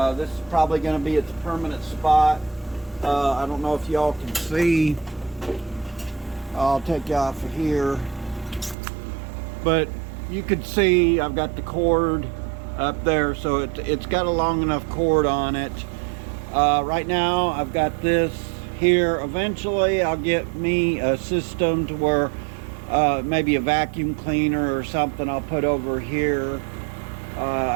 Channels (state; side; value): drops out; left; at 8.8 s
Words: This is probably going to be its permanent spot. I don't know if y'all can see. I'll take you off of here, but you can see I've got the cord up there, so it's got a long enough cord on it. Right now I've got this here. Eventually I'll get me a system to where maybe a vacuum cleaner or something I'll put over here.